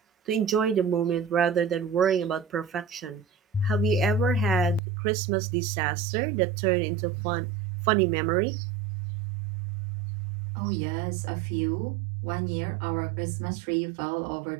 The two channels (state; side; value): drops out; left; at 4.8 s